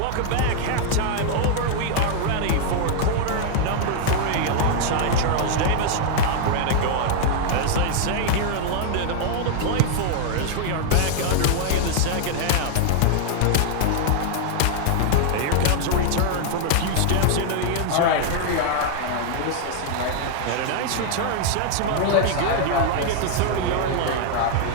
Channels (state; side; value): different; both; correlation 0.00